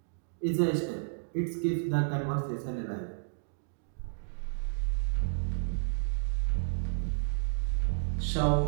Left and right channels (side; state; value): left; silent; digital silence